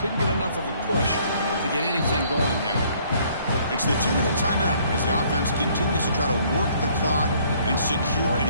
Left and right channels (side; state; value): both; inverted; correlation -0.62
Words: couldn't get enough of a push to get anything going there. It's the 2-minute timeout as the offense continues to try to work the clock and secure an